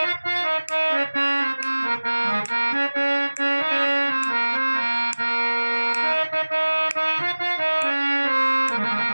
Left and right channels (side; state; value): both; inverted; correlation -1.00